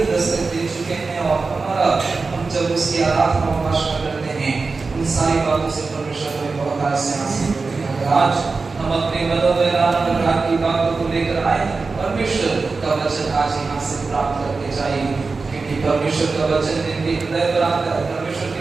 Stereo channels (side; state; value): left; quieter; 4.2 dB